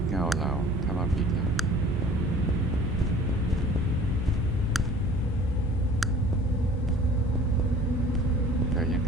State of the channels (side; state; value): both; normal; correlation 0.48